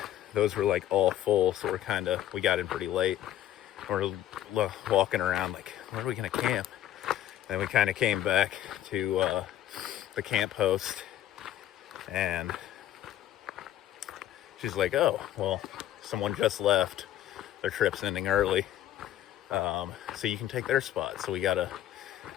those were like all full, so we got in pretty late. We're walking around like, where are we gonna camp? And we kind of came back to the camp host, and she's like, oh well, someone just left, their trip's ending early, so you can take their spot. So we got a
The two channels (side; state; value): right; quieter; 12.2 dB